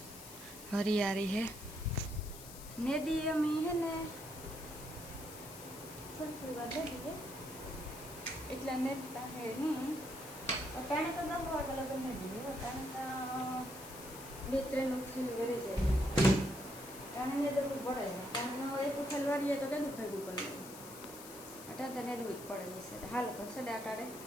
હરિયાળી હે નદી અમે હે ને થોડી વાર દઈએ એટલે નેતા હે નહીં અટાણે તો 10 વાગ્યા લગન ને દઈએ અટાણે તો 2-3 ઉથલ વરે જાય અટાણે ને તો પડે અટાણે એક ઉથલ વારીએ તો કેટલું ભેગું કરી લઈએ અટાણે તો નેદવું જ પડે છે હાલ કરશે ને અટાણે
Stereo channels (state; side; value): noise; left; hiss, 14 dB below the sound